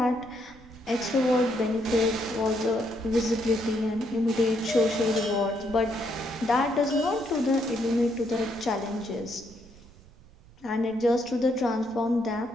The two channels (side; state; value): right; noise; rumble, 23 dB below the sound